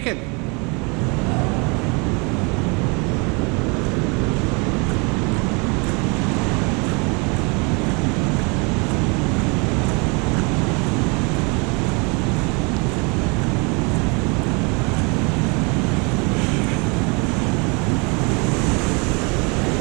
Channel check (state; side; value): quieter; left; 30.9 dB